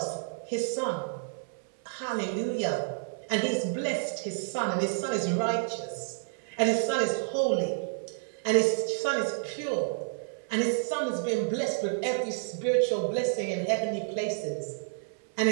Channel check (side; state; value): left; silent; 58 dB below the other